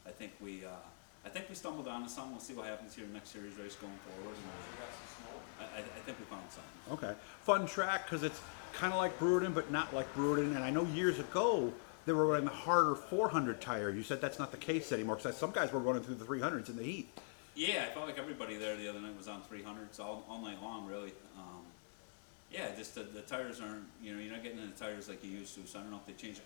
I think we stumbled onto something. We'll see what happens here in the next series race going forward. And I think we found something. Okay, fun track because it's kind of like Brewerton, but not like Brewerton. And I know years ago they were running the harder 400 tire. You said that's not the case anymore, because some guys were running through the 300s in the heat. Yeah, I felt like everybody there the other night was on 300s all night long, really. Yeah, just the tires aren't, you know, you're not getting in the tires like you used to. So I don't know if they changed the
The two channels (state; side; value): silent; right; digital silence